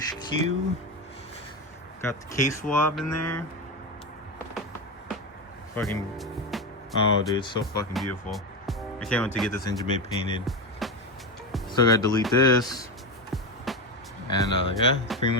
Got the case swab in there. Fucking, oh dude, it's so fucking beautiful. I can't wait to get this engine bay painted. Still gotta delete this. And yeah, that's pretty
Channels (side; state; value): both; normal; correlation 0.16